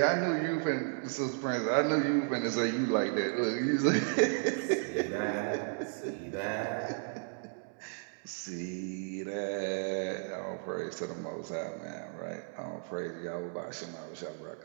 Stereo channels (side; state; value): left; silent; 55 dB below the other